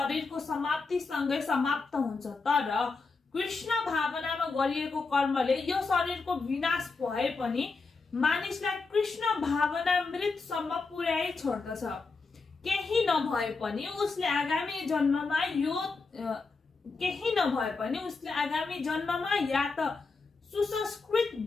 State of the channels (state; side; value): quieter; right; 4.2 dB